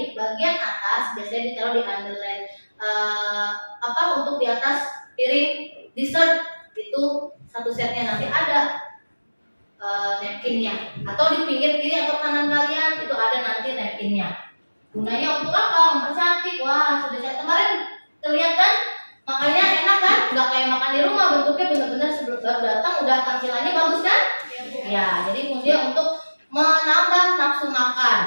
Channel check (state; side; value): inverted; both; correlation -1.00